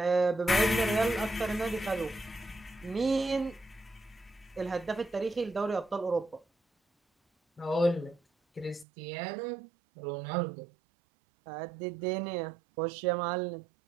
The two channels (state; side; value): drops out; left; at 8.8 s